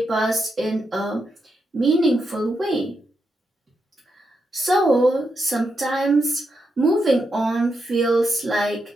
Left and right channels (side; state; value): both; normal; correlation 0.84